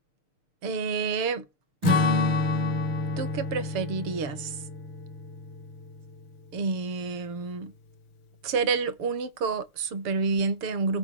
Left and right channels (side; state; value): left; late; 6.6 ms